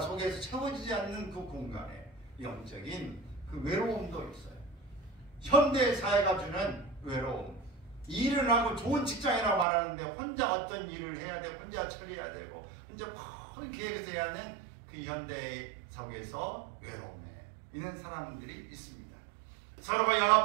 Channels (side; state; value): left; drops out; at 9.7 s